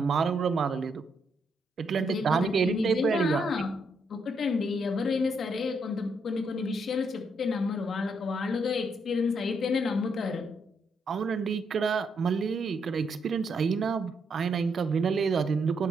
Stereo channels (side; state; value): both; normal; correlation 0.76